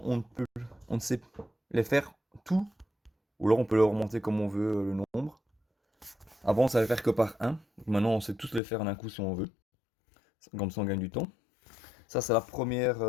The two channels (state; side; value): drops out; right; at 8.6 s